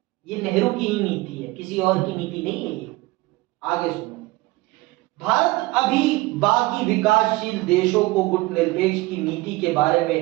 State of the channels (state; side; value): quieter; left; 20.7 dB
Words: ये नेहरू की ही नीति है, किसी और की नीति नहीं है ये। आगे सुनो। भारत अभी बाकी विकासशील देशों को गुट निरपेक्ष की नीति के बारे